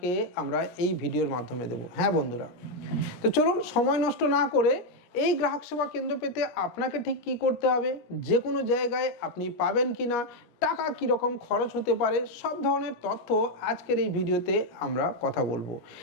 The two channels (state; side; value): late; right; 17 ms